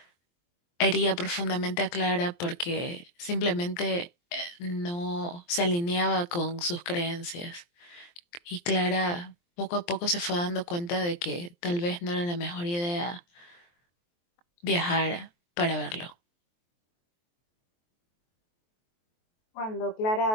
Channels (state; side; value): late; right; 23 ms